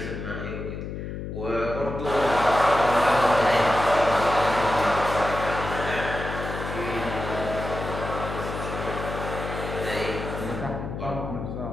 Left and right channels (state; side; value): noise; left; hum, 6 dB below the sound